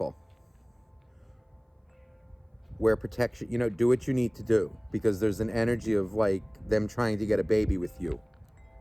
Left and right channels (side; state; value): both; identical; correlation 1.00